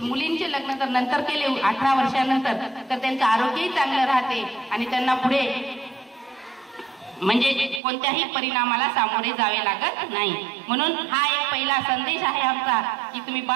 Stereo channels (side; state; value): left; drops out; at 7.8 s